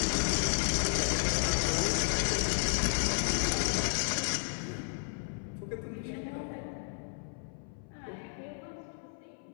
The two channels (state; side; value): silent; right; 56 dB below the other